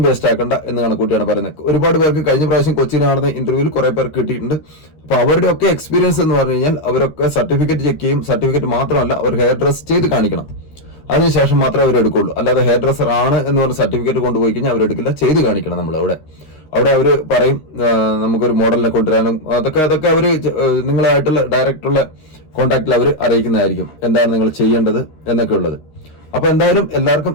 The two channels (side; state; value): right; late; 13 ms